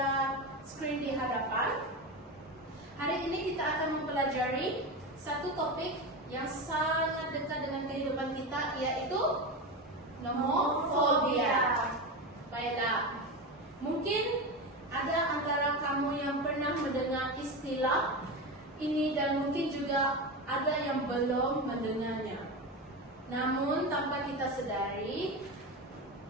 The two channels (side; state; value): both; normal; correlation 0.20